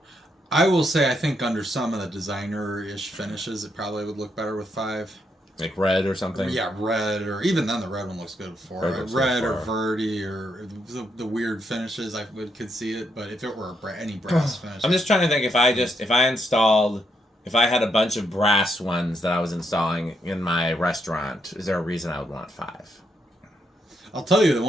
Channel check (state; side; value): normal; both; correlation 0.78